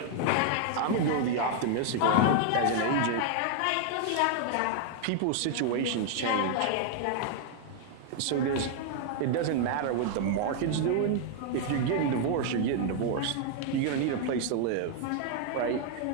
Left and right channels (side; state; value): both; different; correlation 0.00